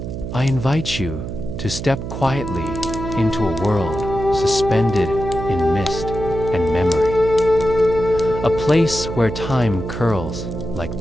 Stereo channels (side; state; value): right; noise; hum, 6 dB below the sound